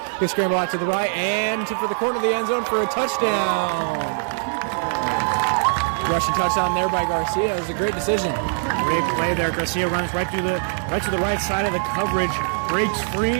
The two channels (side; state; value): left; silent; 58 dB below the other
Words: He'll scramble out to the right and for the corner of the end zone for a touchdown. Rushing touchdown there by Garcia. It was a great decision. Great play there. Garcia runs right to the right side of the coverage. Breaks free.